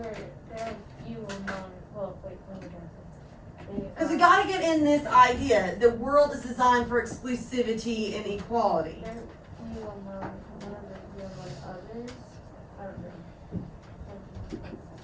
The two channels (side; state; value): both; identical; correlation 1.00